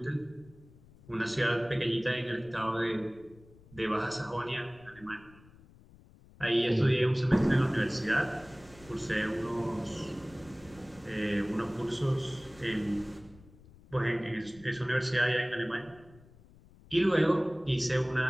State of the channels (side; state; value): left; noise; rumble, 24 dB below the sound